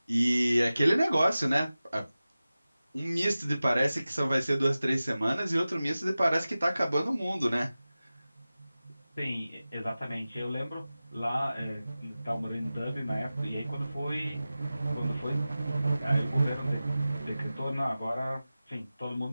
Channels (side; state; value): both; inverted; correlation -0.95